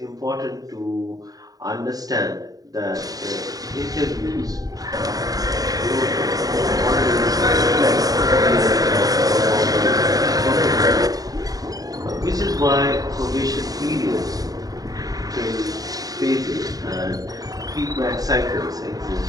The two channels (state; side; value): late; left; 0.18 ms